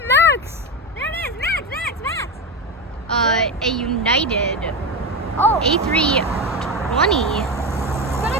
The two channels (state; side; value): normal; both; correlation 0.17